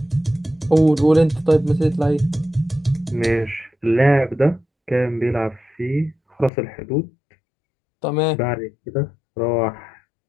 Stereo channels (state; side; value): drops out; right; at 6.5 s